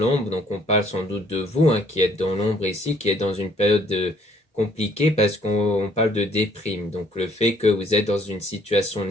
donc on parle sans doute de vous, hein, qui êtes dans l'ombre ici, qui êtes dans une période compliquée parce qu'on parle de déprime. Donc le fait que vous êtes dans une situation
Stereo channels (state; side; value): normal; both; correlation 0.63